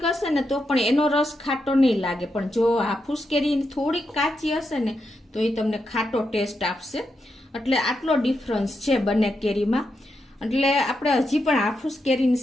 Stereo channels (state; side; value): normal; both; correlation 0.85